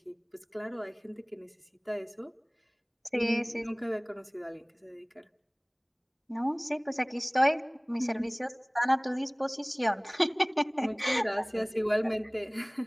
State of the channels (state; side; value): identical; both; correlation 1.00